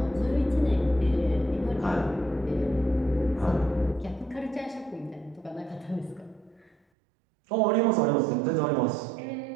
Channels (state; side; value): drops out; left; at 6.8 s